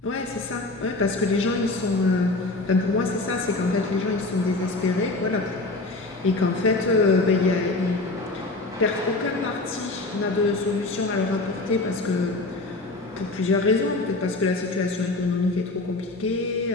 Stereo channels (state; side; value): quieter; right; 3.1 dB